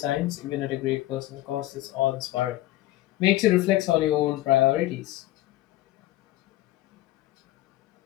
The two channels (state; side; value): quieter; right; 16.3 dB